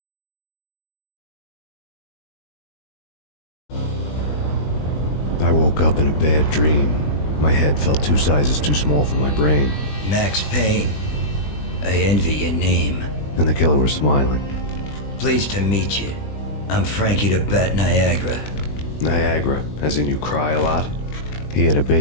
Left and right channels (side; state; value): right; late; 20 ms